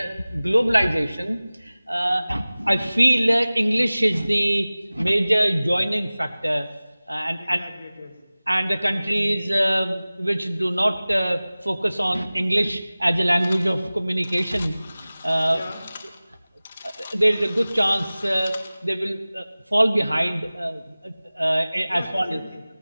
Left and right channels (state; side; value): inverted; both; correlation -0.98